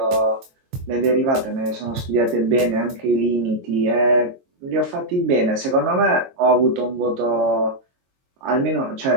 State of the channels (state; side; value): late; left; 22 ms